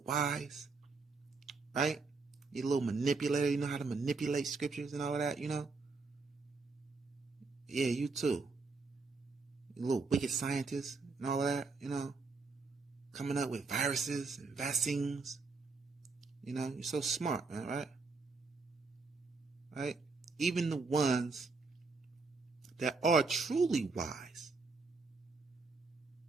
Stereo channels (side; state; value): left; quieter; 4.1 dB